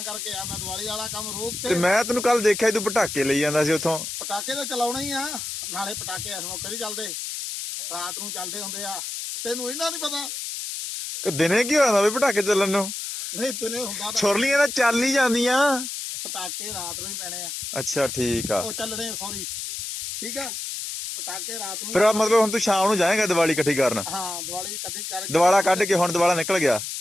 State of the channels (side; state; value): left; noise; hiss, 6 dB below the sound